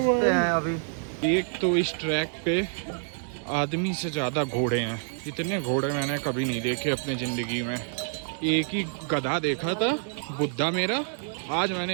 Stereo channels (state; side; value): silent; left; digital silence